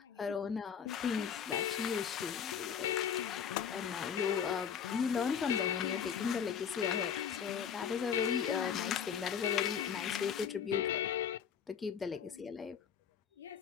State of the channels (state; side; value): quieter; right; 7.8 dB